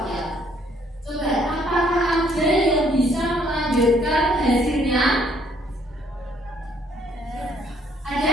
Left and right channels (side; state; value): both; normal; correlation 0.65